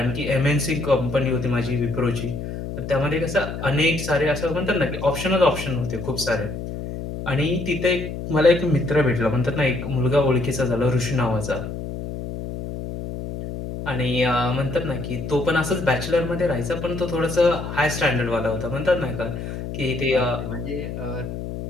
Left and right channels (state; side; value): noise; left; hum, 7 dB below the sound